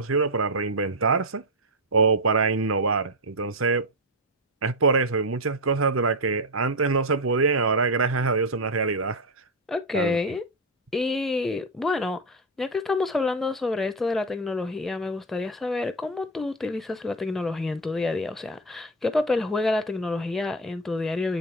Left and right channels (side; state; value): both; normal; correlation 0.09